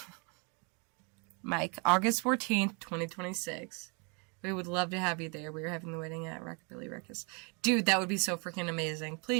Mike, August 14th, 2026. We would love to have you there. We are having the wedding at Rockabilly Ruckus. Dude, that would be so freaking amazing.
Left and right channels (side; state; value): left; quieter; 34.4 dB